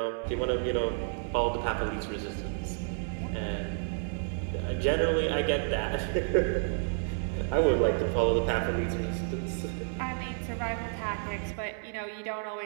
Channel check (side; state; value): left; silent; 57 dB below the other